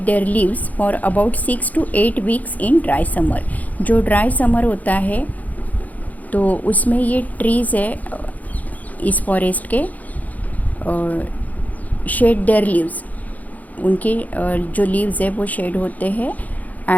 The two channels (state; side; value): late; right; 0.078 ms